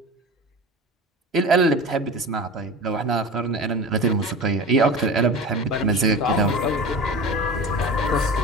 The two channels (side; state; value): both; normal; correlation 0.32